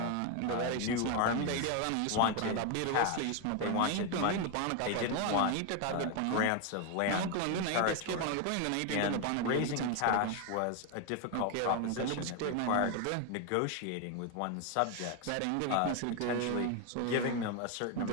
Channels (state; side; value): different; both; correlation 0.01